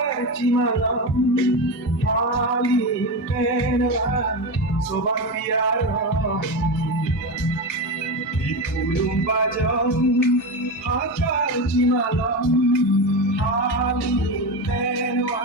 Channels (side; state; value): both; normal; correlation 0.18